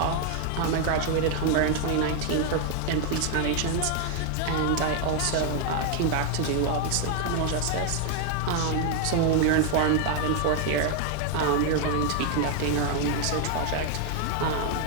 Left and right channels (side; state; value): both; different; correlation 0.00